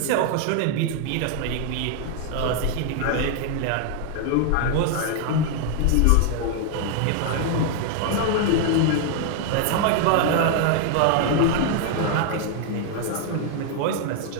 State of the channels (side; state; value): both; different; correlation 0.00